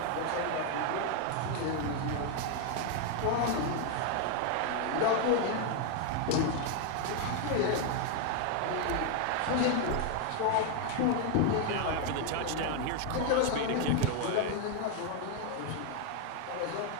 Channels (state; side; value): different; both; correlation 0.01